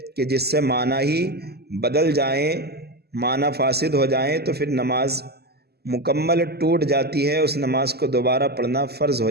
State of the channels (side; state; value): left; late; 0.46 ms